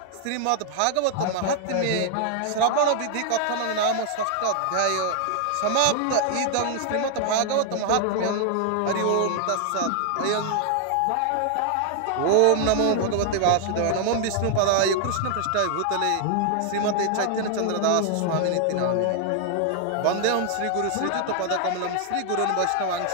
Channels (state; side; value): different; both; correlation 0.00